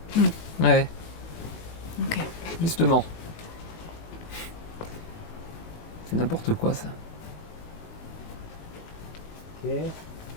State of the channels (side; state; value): right; late; 19 ms